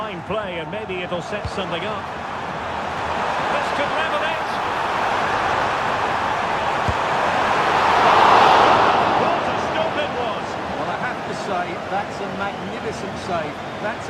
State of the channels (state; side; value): identical; both; correlation 1.00